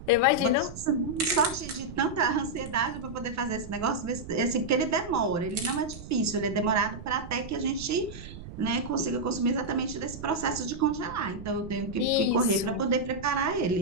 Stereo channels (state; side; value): noise; right; rumble, 13 dB below the sound